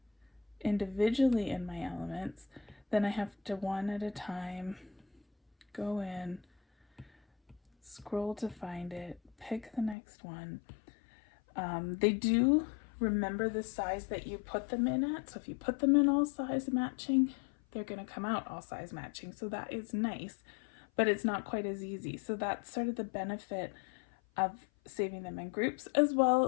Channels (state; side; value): drops out; right; at 10.0 s